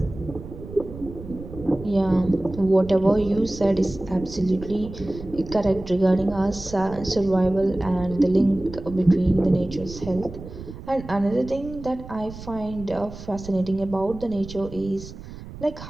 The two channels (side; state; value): right; noise; rumble, 14 dB below the sound